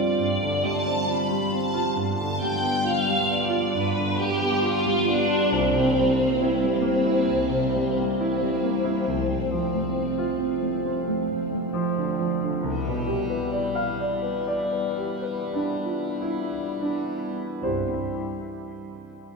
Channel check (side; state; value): both; normal; correlation 0.32